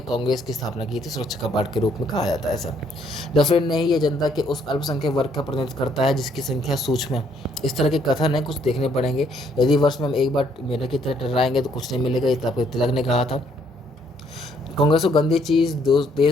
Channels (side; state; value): both; normal; correlation 0.67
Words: कांग्रेस की स्थापना की थी, सुरक्षा कपाट के रूप में कहा जाता है ऐसा। डफरिन ने ही ये जनता के उस अल्पसंख्यक वर्ग का प्रतिनिधित्व करता है जिसकी संख्या सूक्ष्म है। इस तरह के कथन है, कुछ देखने पड़ेंगे। यदि वर्ष में हम एक बार मेढक की तरह टर्राएंगे तो कुछ नहीं मिलेगा, ये आपको तिलक ने कहा था। कांग्रेस को गंदी चीज़,